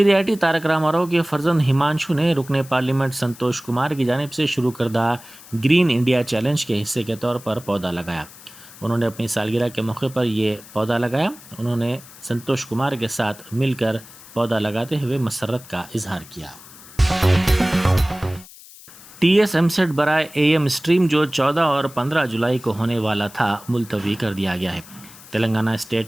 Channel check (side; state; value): left; noise; hiss, 20 dB below the sound